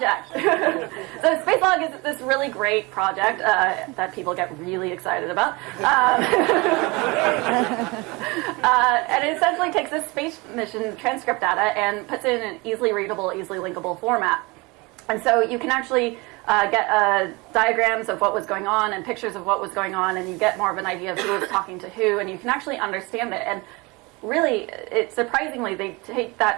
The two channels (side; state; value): left; quieter; 25.5 dB